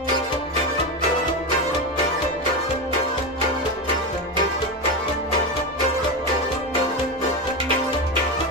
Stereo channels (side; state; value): both; normal; correlation 0.16